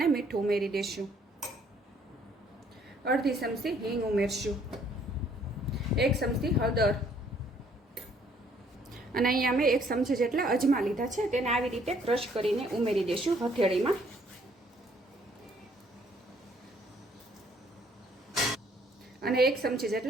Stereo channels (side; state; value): both; normal; correlation 0.63